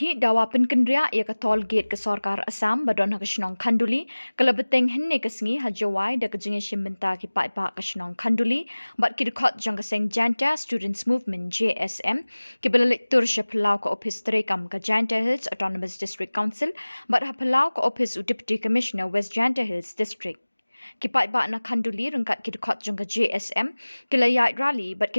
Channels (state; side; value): inverted; both; correlation -1.00